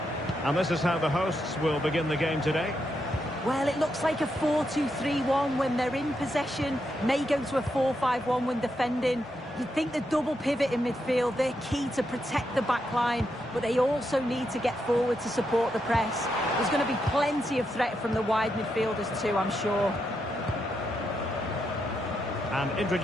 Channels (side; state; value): both; normal; correlation 0.82